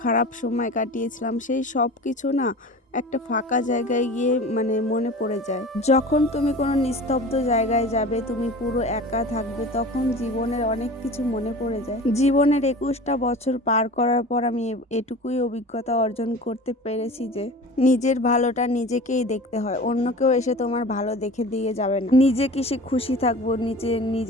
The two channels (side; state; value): both; normal; correlation 0.37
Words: খারাপ সময় কাটিয়েছিলাম, সেই সব কিছু না একটা ফাঁকা জায়গায় গিয়ে মনে পড়ে যায়। যখন তুমি কোনো নিস্তব্ধ জায়গায় যাবে, তুমি পুরো একা থাকবে, তখন জীবনের অনেক কিছু মনে পড়ে যায়। জীবনের 21টা বছর পার করার পর আমি এটুকুই অভিজ্ঞতা অর্জন করতে পেরেছি যে নিজের ভালোটা নিজেকেই দেখতে হয়, অন্য কেউ এসে তোমার ভালো দেখে দিয়ে যাবে না। নিজে কিসে খুশি থাকবো,